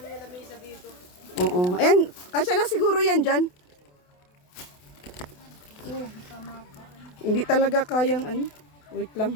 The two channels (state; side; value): late; right; 28 ms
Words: yung lamesa dito. Oo. Ayan, kasya na siguro yan dyan. Tama pa. Hindi talaga kayang Wait lang